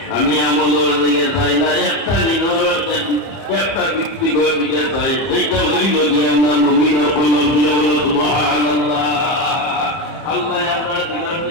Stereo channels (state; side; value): late; right; 30 ms